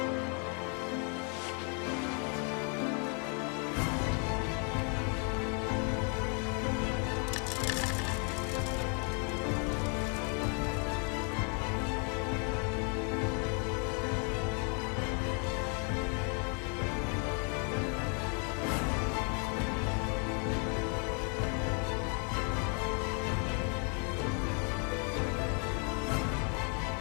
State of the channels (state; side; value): quieter; right; 38.3 dB